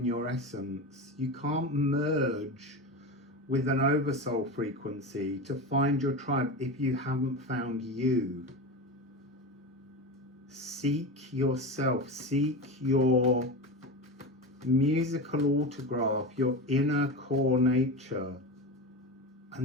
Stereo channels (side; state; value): both; normal; correlation 0.24